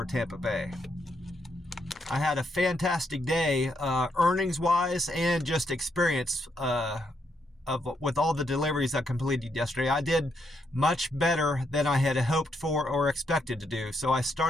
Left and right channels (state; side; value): normal; both; correlation 0.77